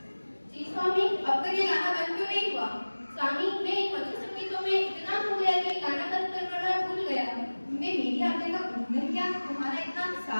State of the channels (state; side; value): inverted; both; correlation -1.00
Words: जी स्वामी, अब तक ये गाना बंद क्यों नहीं हुआ? स्वामी, मैं इन मधुर संगीतों में इतना खो गया कि गाना बंद करवाना भूल गया। मैं मेरी आज्ञा का उल्लंघन किया, तुम्हारा इतना